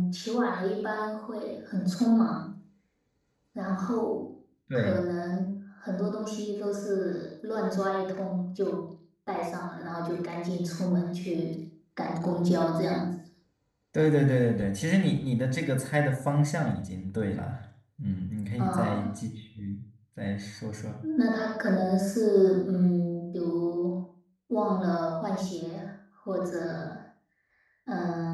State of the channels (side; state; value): both; identical; correlation 1.00